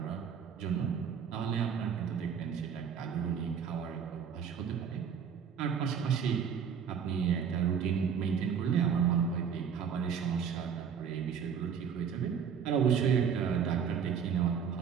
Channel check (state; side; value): quieter; left; 7.2 dB